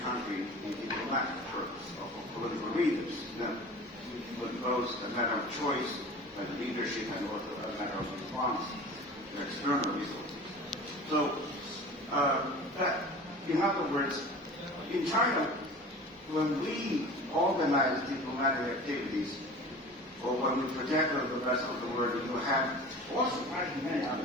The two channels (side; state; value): both; normal; correlation 0.38